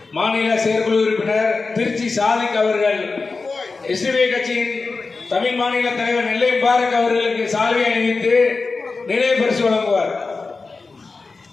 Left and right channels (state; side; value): quieter; right; 4.1 dB